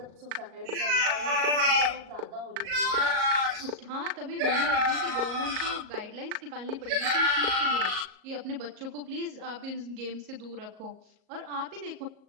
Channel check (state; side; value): late; left; 38 ms